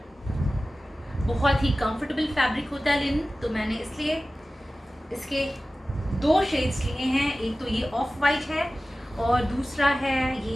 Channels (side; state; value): both; normal; correlation 0.96